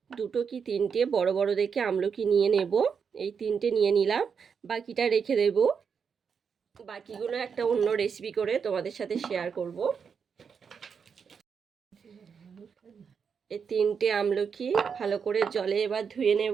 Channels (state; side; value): quieter; left; 6.4 dB